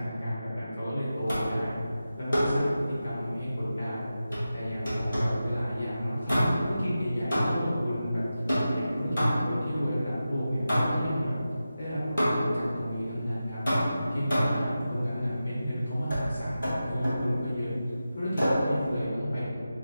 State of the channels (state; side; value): inverted; both; correlation -0.93